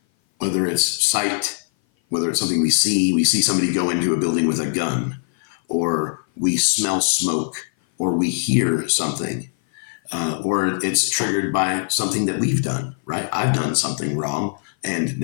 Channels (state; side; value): silent; right; 57 dB below the other